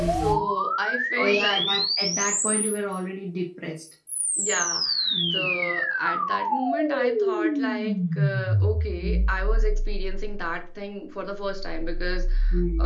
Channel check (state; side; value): identical; both; correlation 1.00